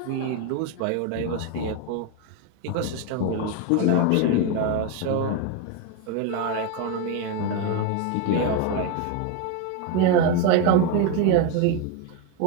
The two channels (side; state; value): both; different; correlation 0.02